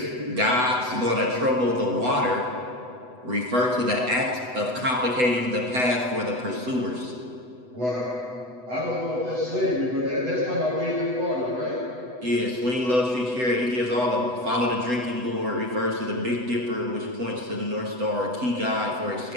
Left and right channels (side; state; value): left; late; 8.0 ms